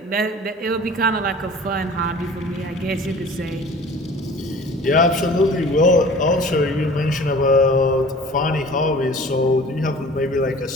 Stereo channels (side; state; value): both; normal; correlation 0.45